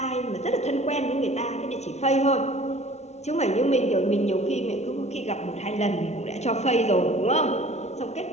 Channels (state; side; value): late; right; 0.32 ms